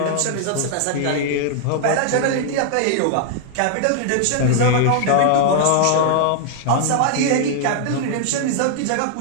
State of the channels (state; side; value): different; both; correlation -0.01